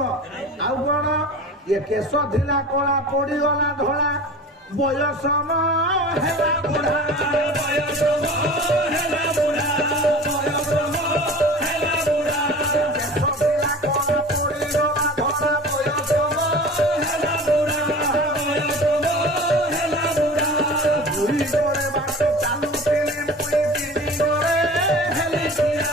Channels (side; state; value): both; normal; correlation 0.38